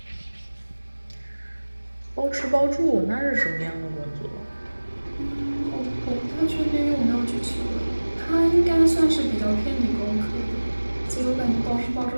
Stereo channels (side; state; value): both; inverted; correlation -1.00